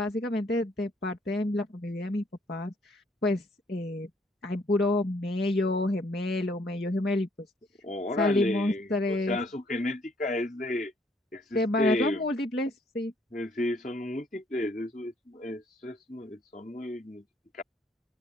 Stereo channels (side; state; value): both; normal; correlation 0.66